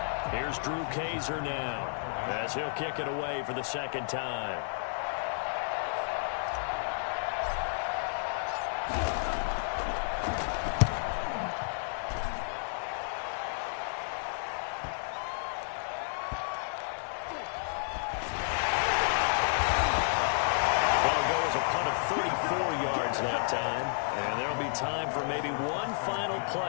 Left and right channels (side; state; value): right; silent; digital silence